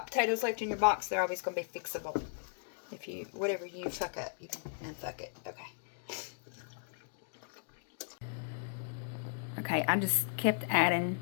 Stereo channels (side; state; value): right; silent; digital silence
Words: potatoes left in your box, they're always going to be fixable. If you, whatever you fuck up, you can unfuck it. Okay. Okay, I just kept adding